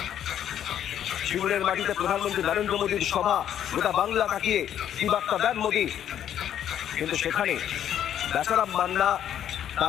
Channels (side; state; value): right; quieter; 10.1 dB